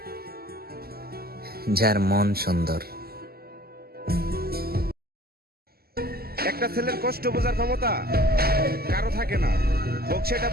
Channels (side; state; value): left; late; 0.45 ms